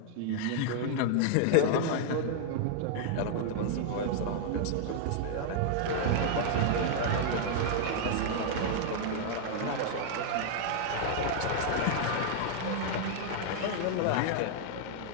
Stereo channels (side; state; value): both; different; correlation -0.01